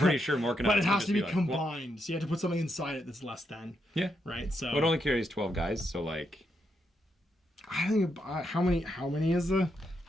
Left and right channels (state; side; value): normal; both; correlation 0.81